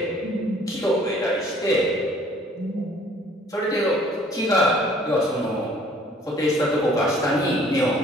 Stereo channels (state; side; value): normal; both; correlation 0.57